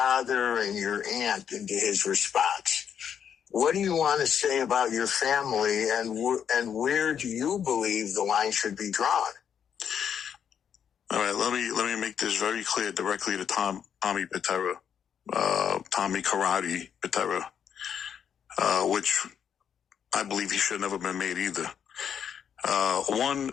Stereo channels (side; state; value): right; quieter; 8.2 dB